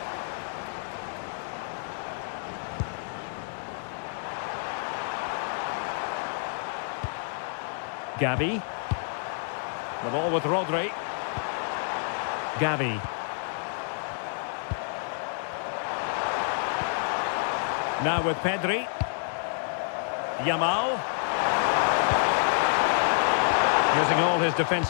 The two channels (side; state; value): right; silent; digital silence